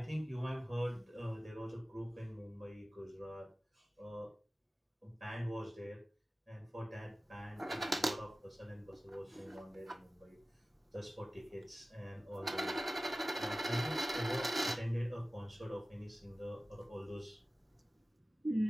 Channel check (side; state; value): both; normal; correlation 0.97